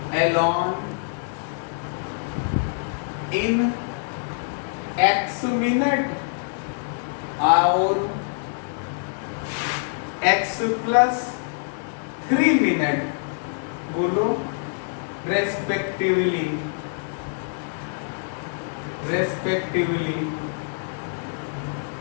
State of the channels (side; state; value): right; silent; digital silence